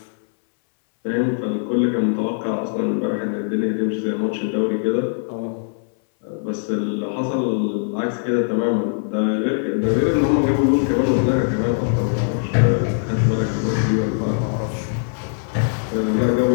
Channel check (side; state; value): right; silent; 65 dB below the other